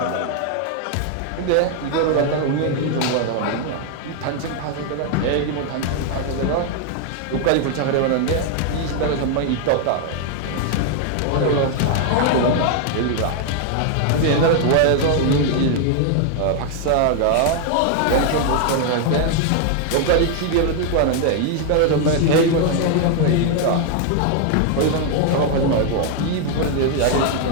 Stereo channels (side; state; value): both; different; correlation 0.00